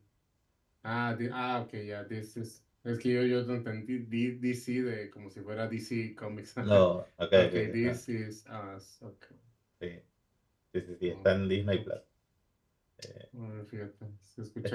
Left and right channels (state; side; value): identical; both; correlation 1.00